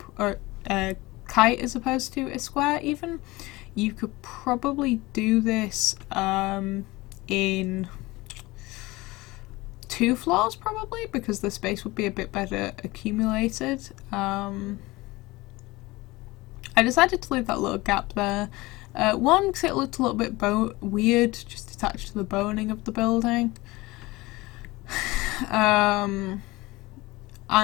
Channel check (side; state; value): right; quieter; 21.0 dB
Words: or a kite as opposed to a square even, you could probably do this in 2 floors probably, because the space would be a bit better accumulated. I decided to leave that little gap there. One, because it looked a little bit weird, just attached to the boning of the building. And